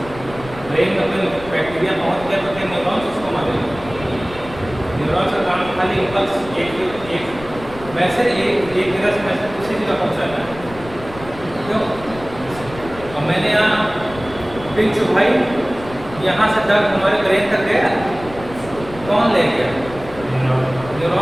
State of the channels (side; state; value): left; noise; rumble, 16 dB below the sound